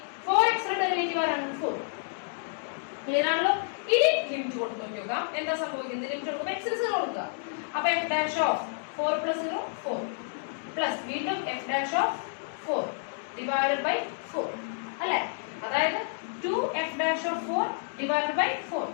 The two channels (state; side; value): silent; right; digital silence